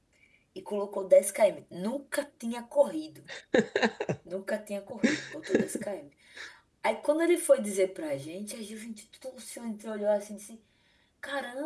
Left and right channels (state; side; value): identical; both; correlation 1.00